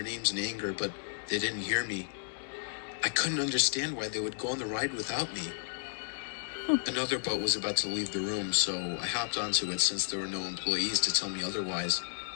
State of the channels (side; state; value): right; silent; digital silence